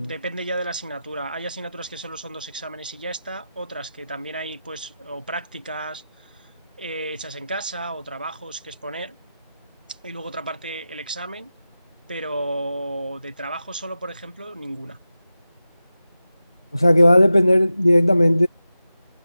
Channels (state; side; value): inverted; both; correlation -0.92